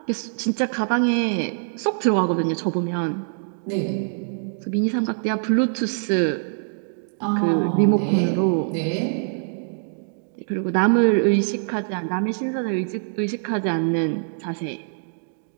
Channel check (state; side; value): silent; left; digital silence